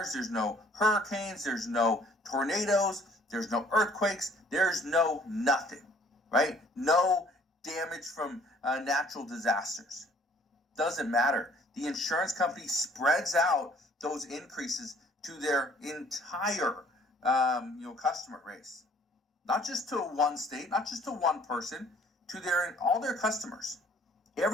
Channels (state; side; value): normal; both; correlation 0.57